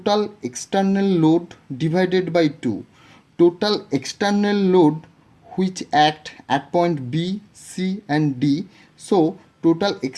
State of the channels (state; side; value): identical; both; correlation 1.00